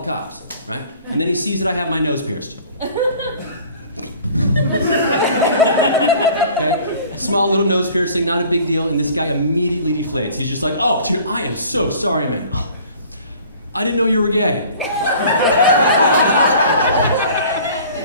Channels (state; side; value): inverted; both; correlation -0.49